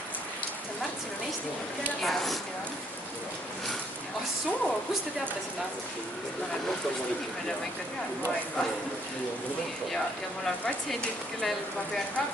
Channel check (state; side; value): normal; both; correlation 0.67